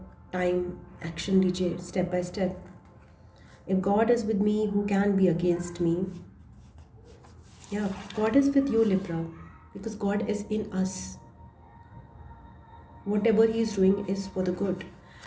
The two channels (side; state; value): both; identical; correlation 1.00